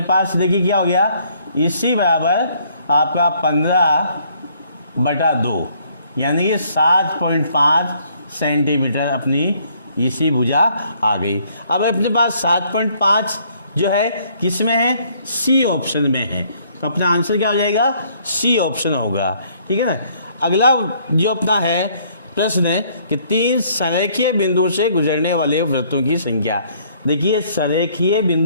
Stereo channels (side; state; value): both; inverted; correlation -0.64